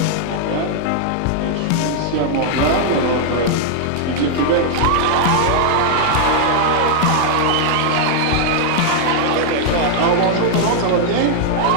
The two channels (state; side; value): different; both; correlation -0.01